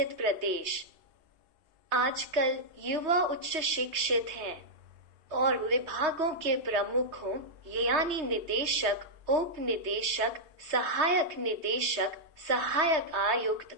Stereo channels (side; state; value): left; late; 3.2 ms